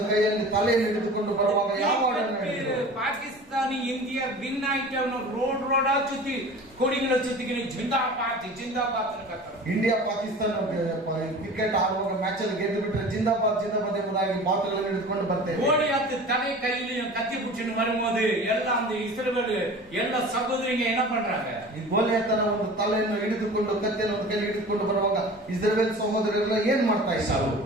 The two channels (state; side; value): normal; both; correlation 0.39